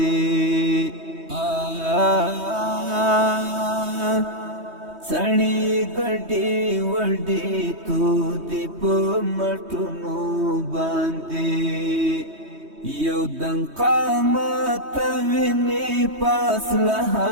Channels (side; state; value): left; late; 3.2 ms